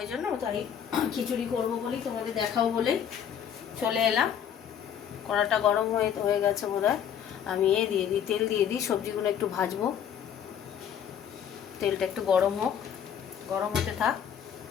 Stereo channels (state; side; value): quieter; right; 8.8 dB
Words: জন্য তাই খিচুড়ি করবো বলেই তোমাদের দেখাবো বলেই চলে এলাম। কড়াটা গরম হয়ে গেছে বোধহয়। আমি দিয়ে দিই, তেল দিয়ে দিই, সবজিগুলো একটু ভাজবো। তেলটা একটু গরম হোক, গরম হতে থাক।